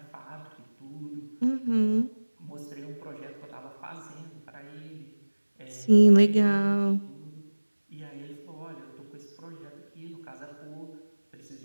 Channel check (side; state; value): both; inverted; correlation -1.00